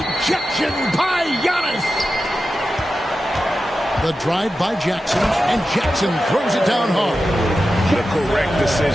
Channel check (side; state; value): both; normal; correlation 0.92